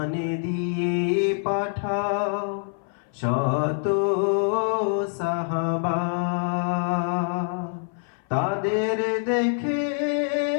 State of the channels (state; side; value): silent; right; 57 dB below the other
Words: দিয়ে পাঠাও শত সাহাবা, তাদের দেখে